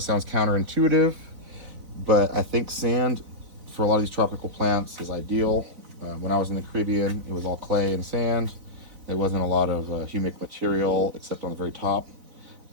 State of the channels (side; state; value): left; late; 3.9 ms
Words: sounds counterintuitive, but I think sand for a lot of these tropical plants is ideal. When I was in the Caribbean, it was all clay and sand. There wasn't a lot of humic material except on the very top.